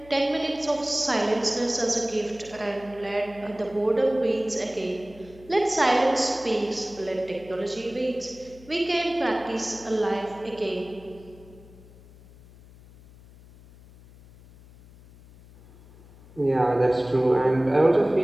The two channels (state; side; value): noise; left; hum, 22 dB below the sound